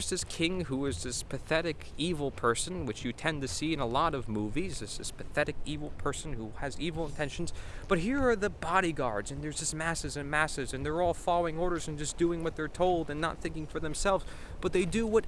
this king who is this pathetic, evil person, which you tend to see in a lot of movies, this pathetic, evil person who has evil intentions. But here are the bodyguards, and there's just masses and masses, and they're all following orders and just doing what they're told and not thinking for themselves. But they do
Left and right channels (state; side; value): identical; both; correlation 1.00